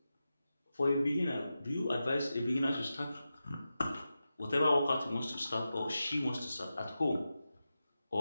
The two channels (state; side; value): inverted; both; correlation -0.92